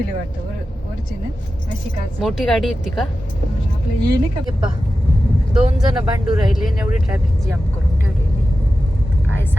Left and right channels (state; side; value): normal; both; correlation 0.93